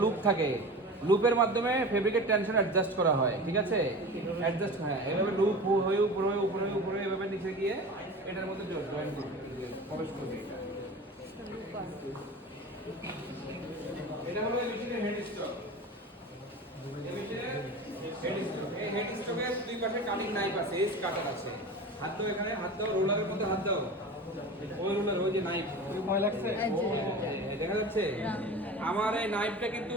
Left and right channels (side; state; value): both; normal; correlation 0.33